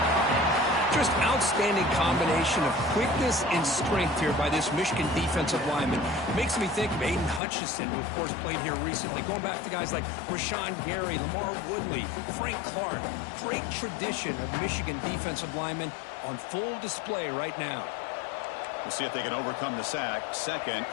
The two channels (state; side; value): drops out; right; at 7.4 s